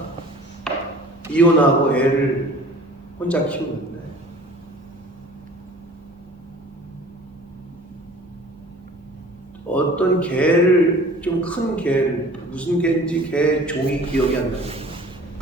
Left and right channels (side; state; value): both; normal; correlation 0.46